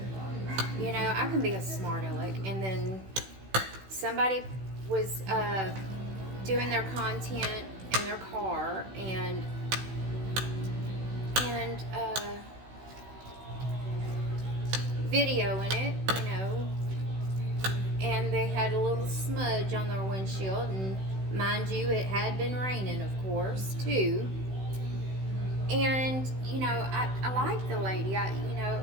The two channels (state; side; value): late; left; 16 ms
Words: You know, I can be a smart aleck. And then somebody was doing their content in their car, and videoing it, and they had a little smudge on their windshield, and mind you, it had been raining, of course, too. And I like the lady.